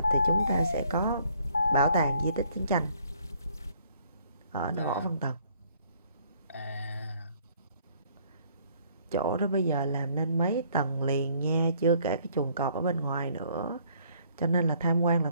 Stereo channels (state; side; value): inverted; both; correlation -0.63